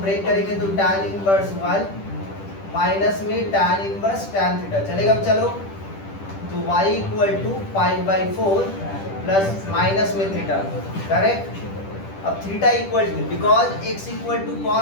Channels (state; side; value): late; right; 10 ms